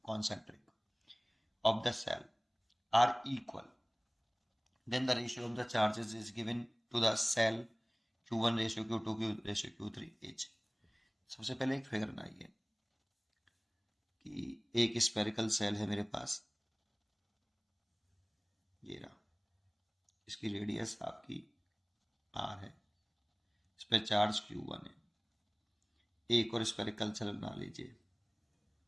concentric of the cell are equal, then the ratio of the charges is given to the cell Q1 ratio Q2 Q ratio Q3 H। सबसे पहले एक figure बनाइए कि एक स्पेरिकल सेल है मेरे पास, ये रहा, इसकी रेडियस आपकी R है, इस पर चार्ज Q1 है। एक और स्पेरिकल सेल बना लीजिए,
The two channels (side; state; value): both; identical; correlation 1.00